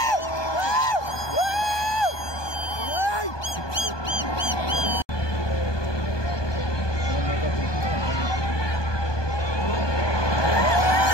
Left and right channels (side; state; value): right; late; 1.2 ms